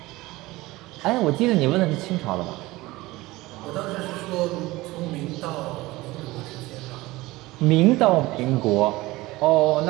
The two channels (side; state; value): left; quieter; 19.7 dB